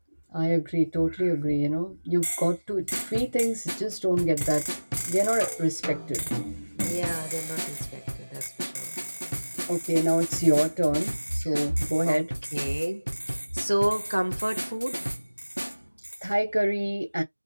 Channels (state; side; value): inverted; both; correlation -1.00